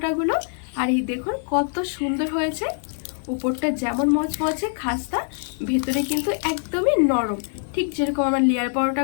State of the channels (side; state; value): right; silent; digital silence